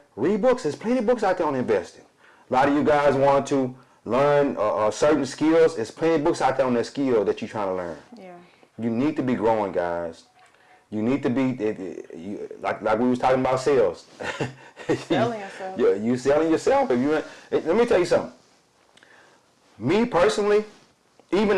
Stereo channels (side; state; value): both; identical; correlation 1.00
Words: Read books. There's plenty of books out there on investing. A lot of you guys want to learn certain skills. There's plenty of books out there on that skill that you're trying to learn. Yeah. You need to be growing, guys. You need to be like we was talking about sales. Selling yourself. You selling yourself. Let me tell you something. Me personally, even